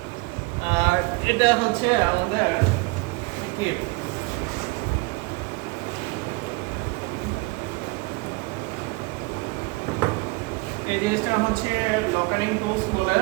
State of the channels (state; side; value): quieter; left; 25.6 dB